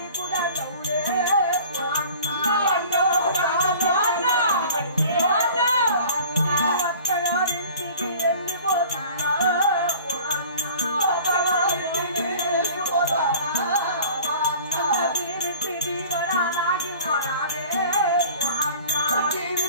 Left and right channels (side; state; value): both; inverted; correlation -0.45